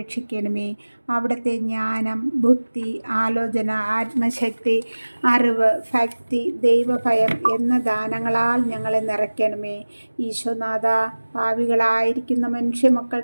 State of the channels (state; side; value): inverted; both; correlation -1.00